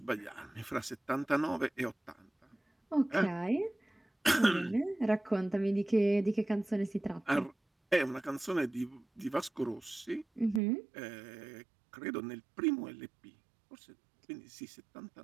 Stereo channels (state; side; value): drops out; left; at 10.6 s